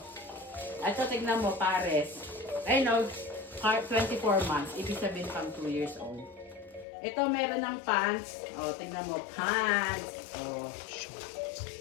Ito, tignan mo, pares. Ay, no, 24 months. Ibig sabihin pang 2 years old. Ito, meron ng pants. O, tignan mo, pants. O,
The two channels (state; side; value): drops out; right; at 6.9 s